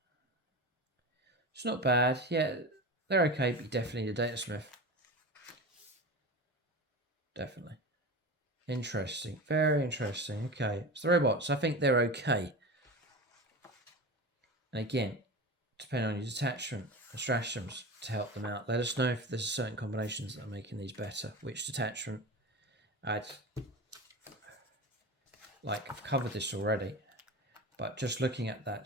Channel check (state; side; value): normal; both; correlation 0.28